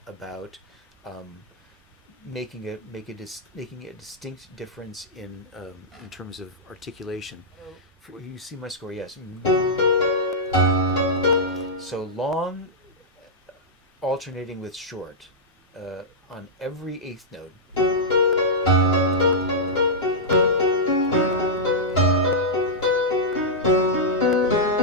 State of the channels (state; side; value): normal; both; correlation -0.10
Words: about making a distinct difference in terms of articulation. You see my score, yes. So long, alternating with short on every eighth note.